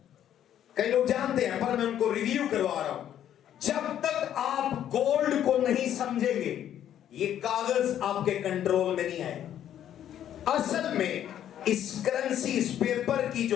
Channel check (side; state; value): right; quieter; 10.7 dB